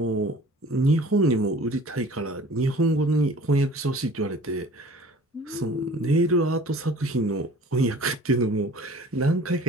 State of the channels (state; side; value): normal; both; correlation 0.47